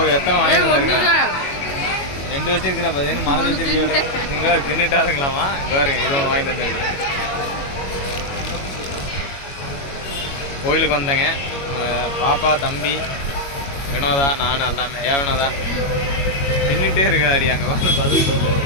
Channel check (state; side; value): late; right; 21 ms